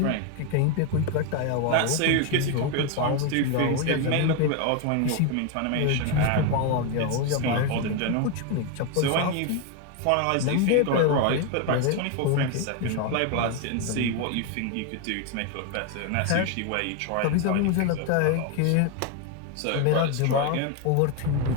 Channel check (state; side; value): different; both; correlation 0.01